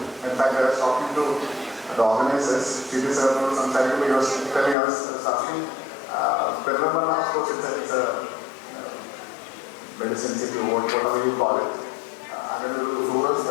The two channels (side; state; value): right; drops out; at 4.8 s